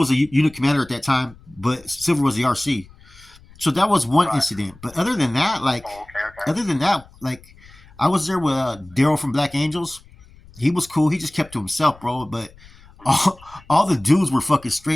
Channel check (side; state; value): left; noise; rumble, 24 dB below the sound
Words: a unit commander at that time, but Silver was the RC. So that was one incident. But other than that, I was there with Daryl from Black Angels. He was cool. He just kept to himself, bro. But all the dudes were fucking